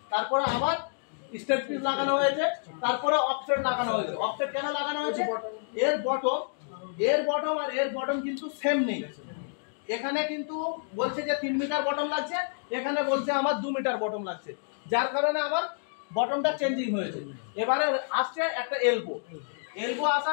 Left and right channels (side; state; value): right; silent; digital silence